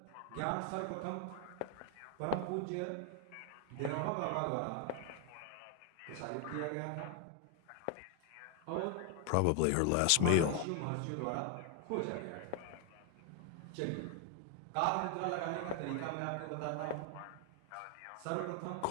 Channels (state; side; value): different; both; correlation 0.00